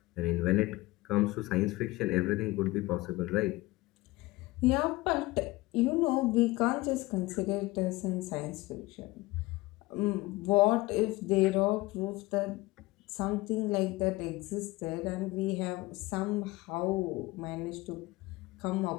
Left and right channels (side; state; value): right; quieter; 20.4 dB